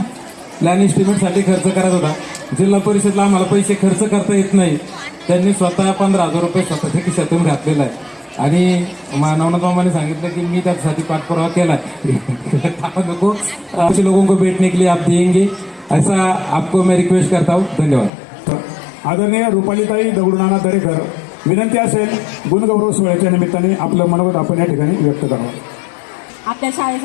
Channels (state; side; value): drops out; right; at 18.1 s